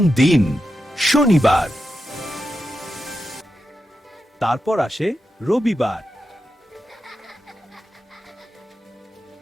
দিন শনিবার, তারপর আসে রবিবার,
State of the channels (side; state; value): both; normal; correlation 0.88